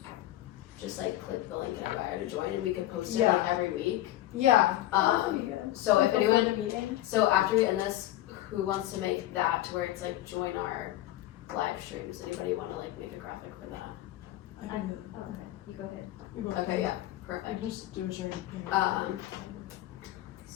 just like click the link in our bio to join, and we could post it like every week. Yeah. So if Before anyone, the meeting. so after we end this, who wants to make that to where it's like join our live streams? Anybody want to like make a graphic for that? I can do Oh, okay, you go ahead. that. You go ahead. Okay, yeah, I perfect. can just do a sharing.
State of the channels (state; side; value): quieter; right; 14.9 dB